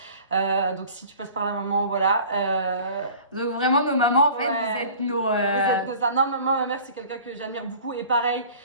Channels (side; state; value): both; inverted; correlation -0.45